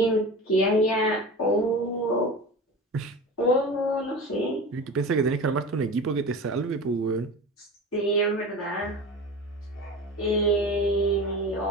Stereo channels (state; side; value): normal; both; correlation 0.32